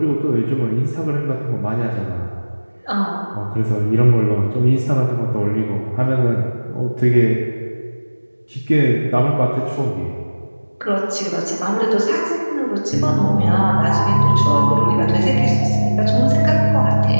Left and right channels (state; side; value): inverted; both; correlation -1.00